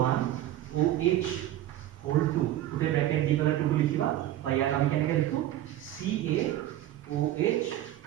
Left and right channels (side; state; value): left; quieter; 13.3 dB